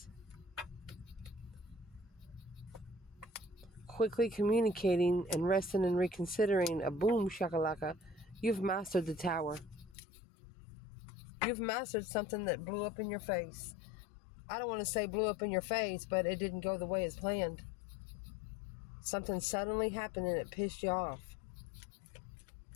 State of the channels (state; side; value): drops out; right; at 10.0 s